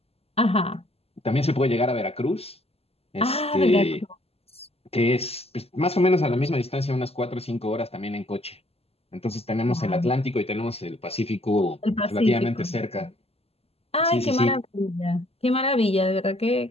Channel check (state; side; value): late; right; 0.29 ms